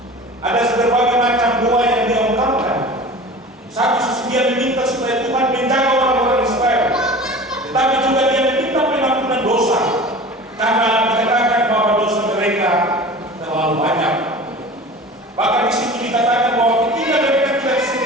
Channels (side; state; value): both; normal; correlation 0.38